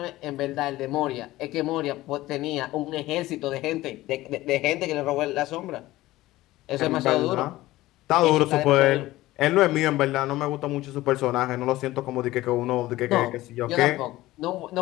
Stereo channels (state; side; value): quieter; right; 17.2 dB